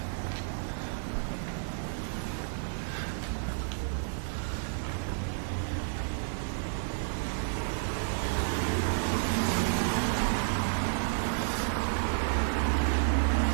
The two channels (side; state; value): left; silent; 57 dB below the other